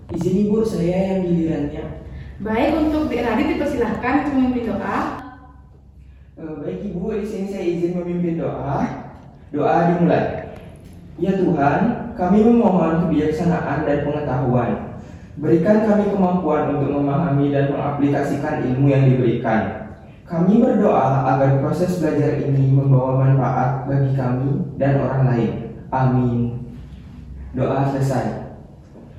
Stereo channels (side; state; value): both; identical; correlation 1.00